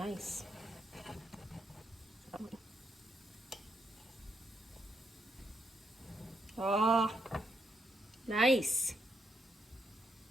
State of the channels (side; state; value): both; normal; correlation 0.79